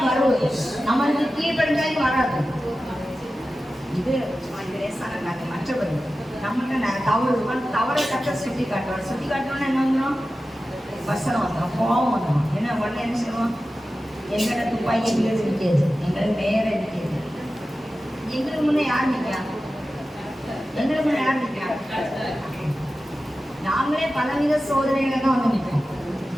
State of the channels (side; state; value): both; normal; correlation 0.94